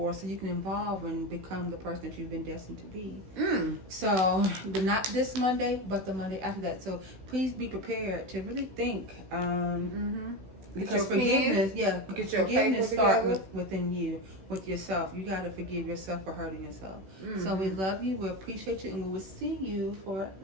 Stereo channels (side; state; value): left; late; 16 ms